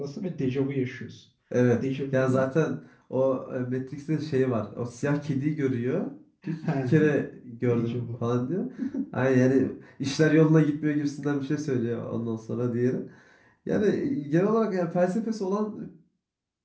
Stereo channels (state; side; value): identical; both; correlation 1.00